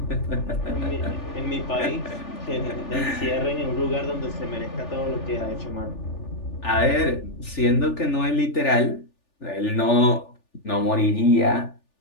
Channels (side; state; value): right; late; 3.4 ms